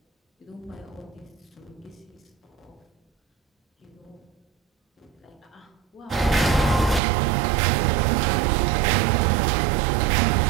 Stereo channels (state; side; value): drops out; left; at 7.0 s